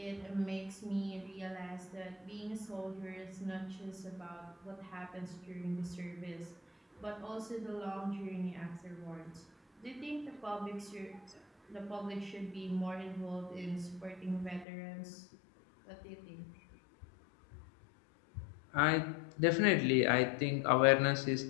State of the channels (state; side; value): drops out; right; at 14.7 s